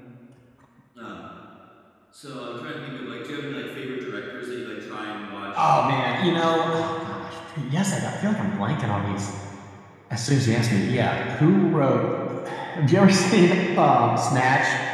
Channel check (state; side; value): identical; both; correlation 1.00